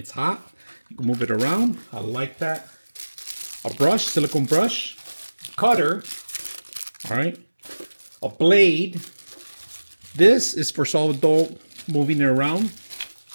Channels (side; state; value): both; inverted; correlation -1.00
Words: hot. You can move it around. I like that. A brush, silicone brush, cutter. All right, a blade. This is for sourdough, moving it around.